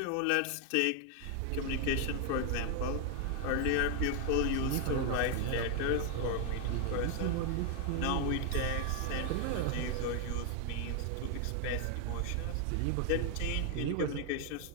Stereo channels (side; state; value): both; different; correlation 0.00